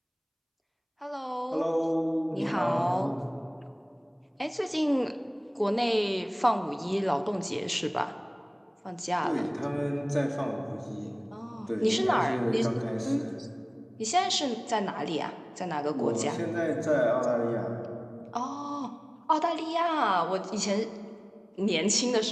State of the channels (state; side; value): identical; both; correlation 1.00